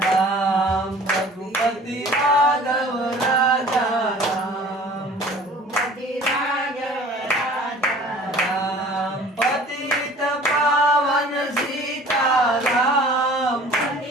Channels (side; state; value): both; normal; correlation 0.48